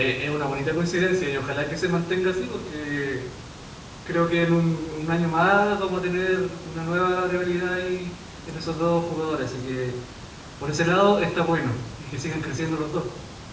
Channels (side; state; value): both; identical; correlation 1.00